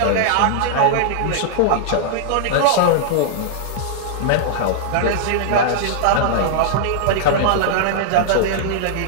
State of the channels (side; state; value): both; different; correlation -0.01